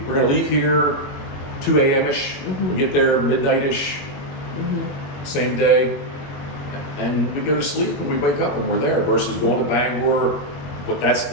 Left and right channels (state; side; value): late; right; 21 ms